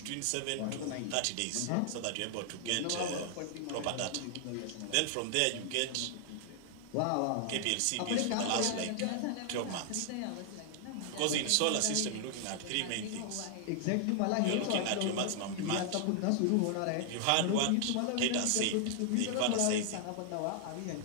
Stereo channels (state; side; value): different; both; correlation 0.00